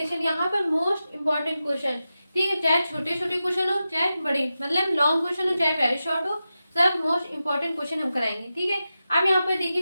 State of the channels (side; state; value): both; inverted; correlation -0.92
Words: यहाँ पर most important question, ठीक है, चाहे छोटे छोटे क्वेश्चन हो चाहे बड़े, मतलब लॉन्ग क्वेश्चन हो चाहे वेरी शॉर्ट हो, सब मोस्ट इंपॉर्टेंट क्वेश्चन हम कराएंगे, ठीक है। अब यहाँ पर